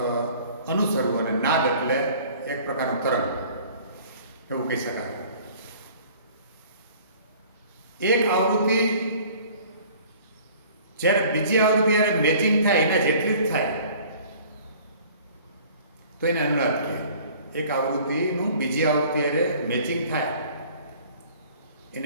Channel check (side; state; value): both; inverted; correlation -0.50